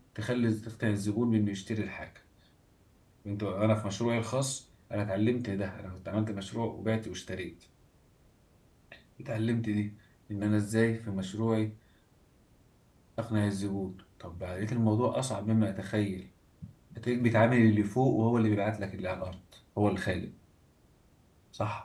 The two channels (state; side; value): identical; both; correlation 1.00